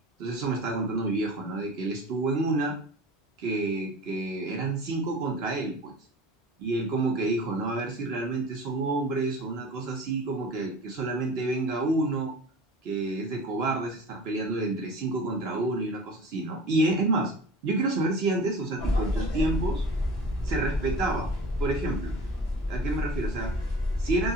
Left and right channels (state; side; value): normal; both; correlation 0.40